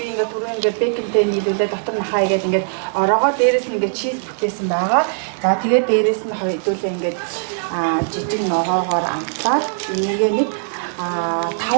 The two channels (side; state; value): left; silent; digital silence